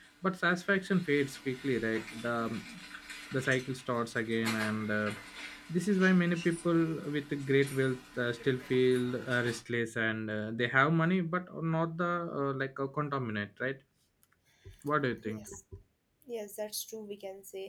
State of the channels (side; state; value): both; identical; correlation 1.00